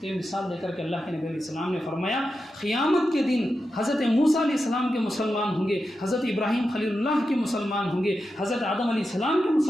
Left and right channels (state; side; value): normal; both; correlation 0.89